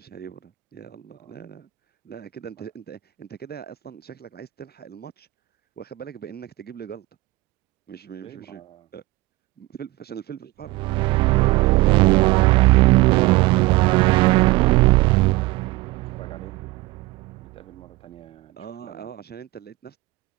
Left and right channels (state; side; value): quieter; left; 20.5 dB